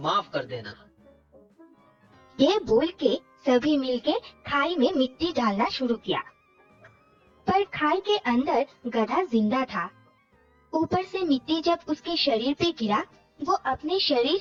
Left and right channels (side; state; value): both; identical; correlation 1.00